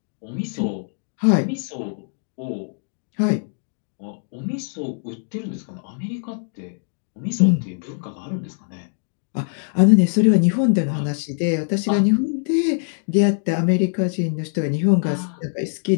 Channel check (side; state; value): right; silent; digital silence